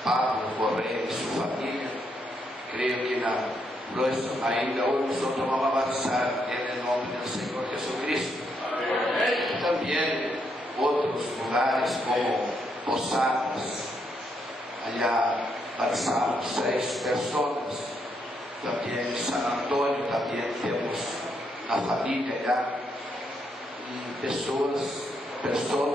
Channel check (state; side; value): normal; both; correlation 0.77